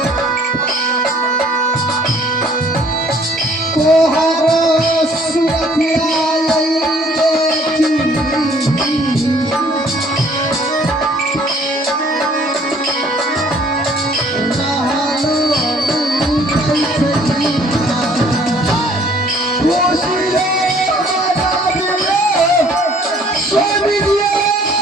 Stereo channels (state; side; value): normal; both; correlation 0.58